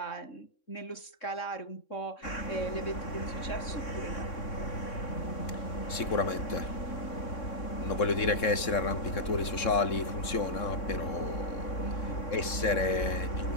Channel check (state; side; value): late; right; 3.6 ms